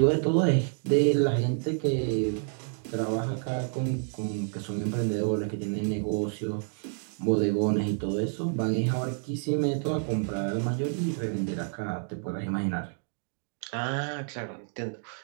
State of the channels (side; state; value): left; silent; 59 dB below the other